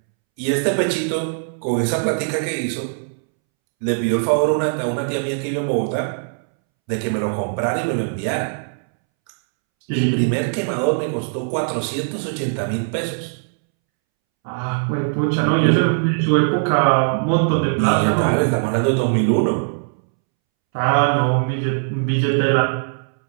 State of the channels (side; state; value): left; silent; 65 dB below the other